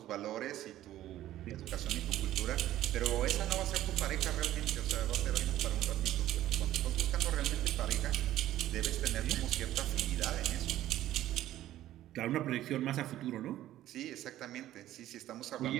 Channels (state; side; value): quieter; left; 13.6 dB